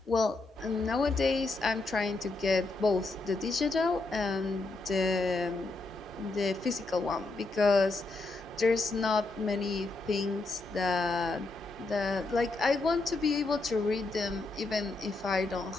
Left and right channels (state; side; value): quieter; right; 3.3 dB